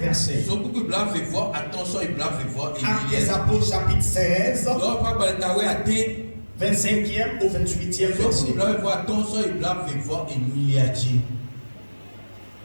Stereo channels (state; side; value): inverted; both; correlation -1.00